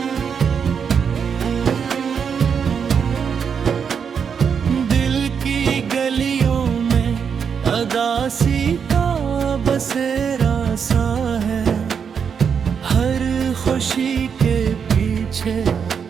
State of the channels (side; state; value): left; quieter; 6.8 dB